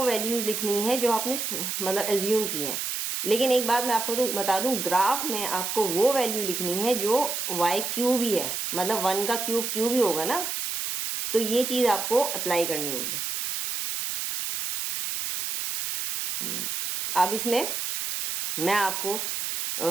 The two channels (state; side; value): noise; right; hiss, 3 dB below the sound